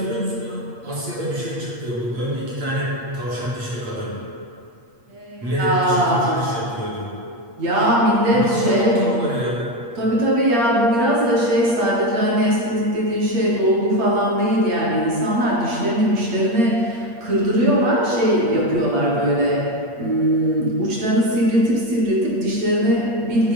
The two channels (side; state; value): left; late; 8.5 ms